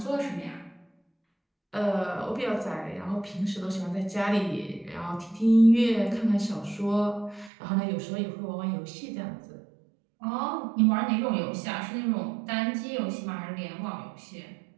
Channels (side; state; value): left; drops out; at 7.5 s